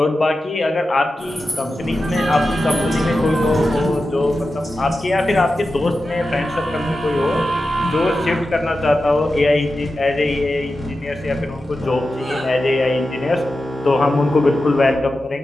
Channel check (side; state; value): both; normal; correlation 0.92